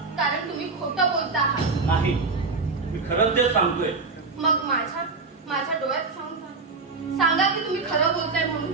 कारण तुम्ही खोटं बोलता आहात. नाही, मी खरंच ते सांगतोय. मग माझ्या डोळ्यात सांगा की तुम्ही खरं बोलताय म्हणून.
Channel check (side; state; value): left; quieter; 4.2 dB